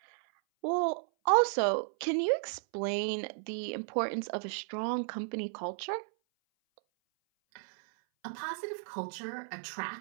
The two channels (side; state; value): left; silent; 55 dB below the other